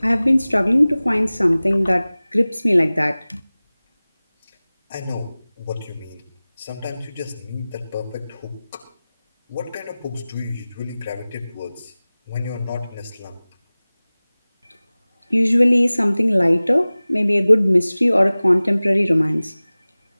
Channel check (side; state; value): both; inverted; correlation -0.98